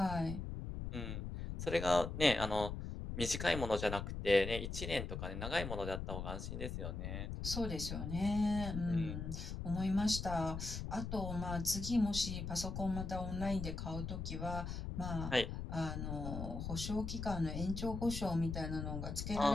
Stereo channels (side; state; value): left; noise; rumble, 5 dB below the sound